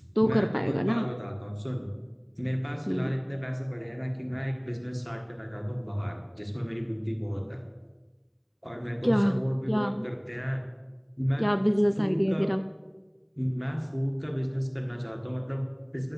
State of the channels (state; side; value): identical; both; correlation 1.00